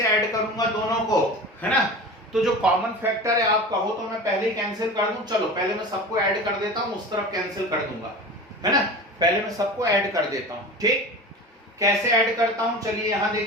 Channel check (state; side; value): normal; both; correlation 0.33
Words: ऐड करूंगा दोनों को, है ना? तो जो कॉमन फैक्टर है, आप कहो तो मैं पहले ही कैंसिल कर दूं। चलो पहले मैं सबको ऐड कर देता हूं, उस तरफ कैंसिल कर दूंगा, है ना? पहले मैं सबको ऐड कर देता हूं। ठीक, कैसे ऐड करता हूं? चलिए यहां